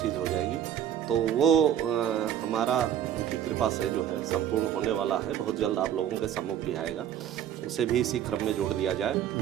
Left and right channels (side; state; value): left; quieter; 10.2 dB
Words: हो जाएगी, तो वो हमारा उनकी कृपा से जो है संपूर्ण होने वाला है। बहुत जल्द आप लोगों के सम्मुख भी आएगा, उसे भी इसी क्रम में जोड़ लिया जाए।